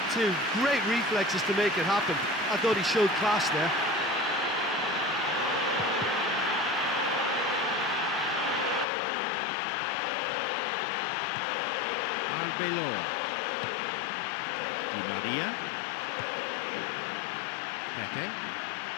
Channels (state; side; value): drops out; right; at 8.8 s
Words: too. Great reflexes to make it happen. I thought he showed class there. Arbeloa. Di Maria. Pepe.